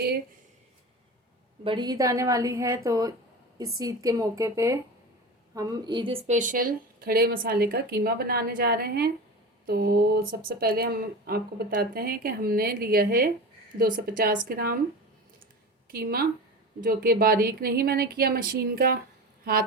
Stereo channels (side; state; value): both; normal; correlation 0.29